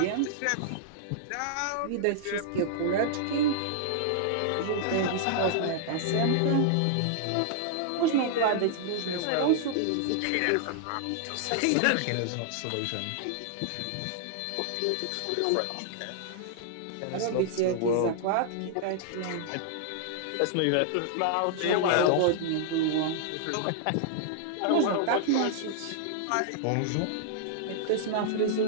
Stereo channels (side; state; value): both; different; correlation -0.01